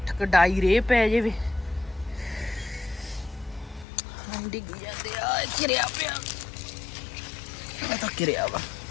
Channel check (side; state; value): right; drops out; at 3.9 s